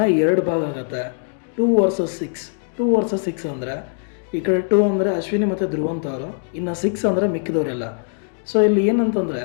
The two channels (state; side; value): silent; right; 65 dB below the other